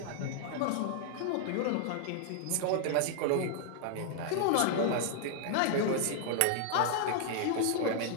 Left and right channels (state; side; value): different; both; correlation 0.00